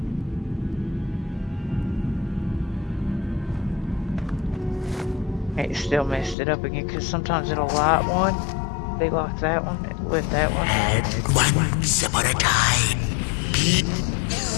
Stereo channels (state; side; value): drops out; right; at 6.4 s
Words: It still messed it up again because sometimes it'll light one, be like that one, with that one. And once upon a time,